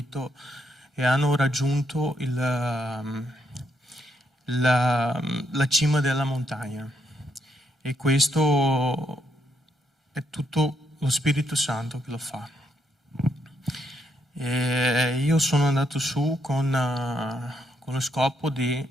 e hanno raggiunto la cima della montagna. E questo è tutto lo Spirito Santo che lo fa. E io sono andato su con lo scopo di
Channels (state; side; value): normal; both; correlation 0.77